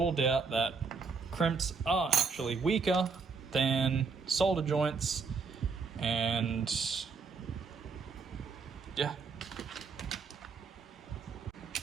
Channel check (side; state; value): left; quieter; 5.0 dB